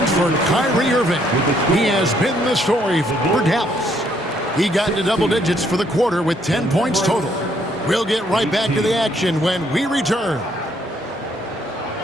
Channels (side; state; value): both; normal; correlation 0.69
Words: for Kyrie Irving. He has been the story for Dallas. He got into double digits for the quarter with 10 points total. We'll get right back to the action when we return.